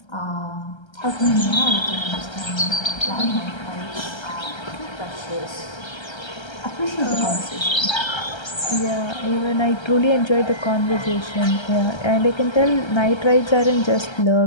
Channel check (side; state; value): right; late; 1.3 ms